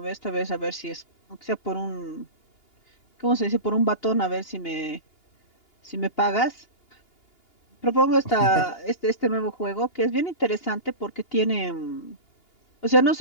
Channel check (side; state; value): right; late; 2.8 ms